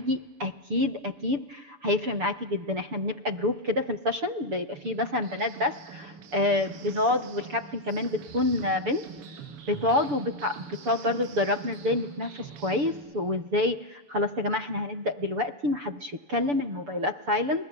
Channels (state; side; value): late; left; 6.9 ms